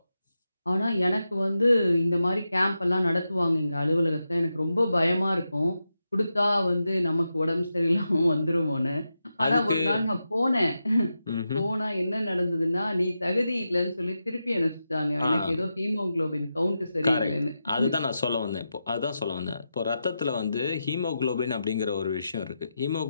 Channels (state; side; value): inverted; both; correlation -0.89